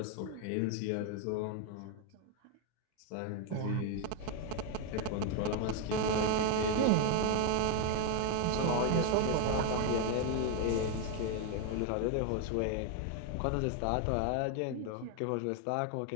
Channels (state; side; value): different; both; correlation 0.01